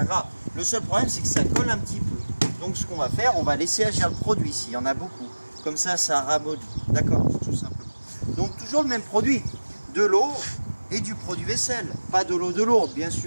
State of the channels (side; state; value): both; inverted; correlation -1.00